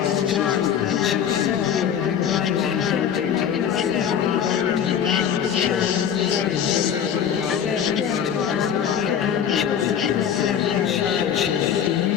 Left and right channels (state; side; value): quieter; right; 8.6 dB